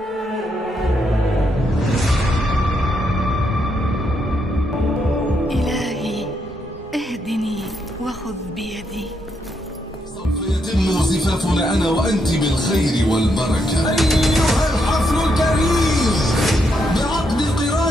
إلهي اهدني وخذ بيدي. سوف يتم زفافنا أنا وأنت بالخير والبركة. أيها الحفل الكريم بعقد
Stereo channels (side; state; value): both; normal; correlation 0.78